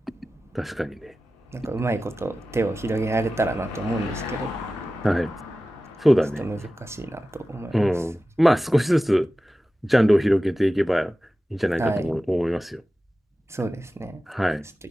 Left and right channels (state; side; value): normal; both; correlation 0.95